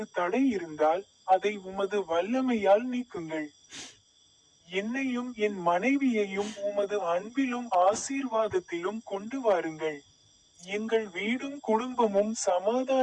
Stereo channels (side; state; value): both; identical; correlation 1.00